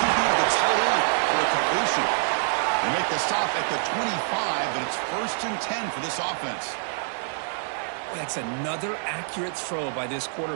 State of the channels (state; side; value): silent; left; digital silence